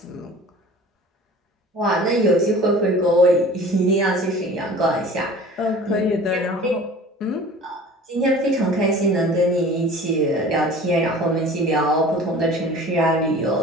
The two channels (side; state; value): both; normal; correlation 0.43